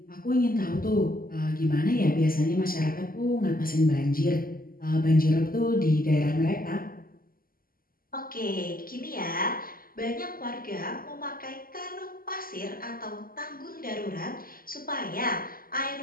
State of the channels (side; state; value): right; late; 0.42 ms